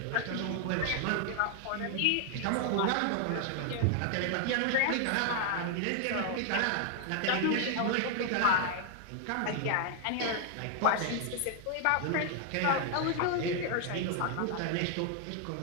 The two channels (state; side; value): different; both; correlation 0.00